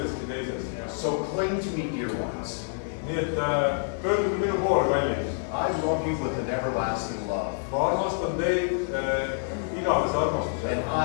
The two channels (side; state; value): right; silent; digital silence